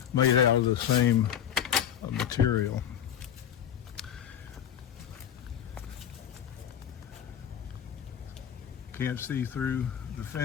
made out of the same material. Can't see through the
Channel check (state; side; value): quieter; right; 9.5 dB